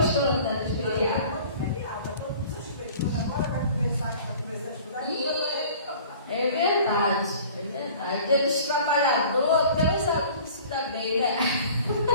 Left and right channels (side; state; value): both; inverted; correlation -0.47